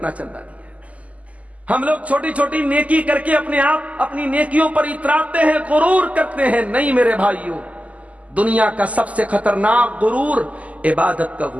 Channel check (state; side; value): late; left; 0.071 ms